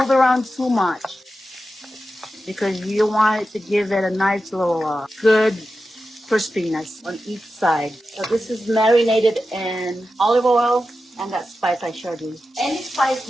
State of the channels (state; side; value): normal; both; correlation 0.91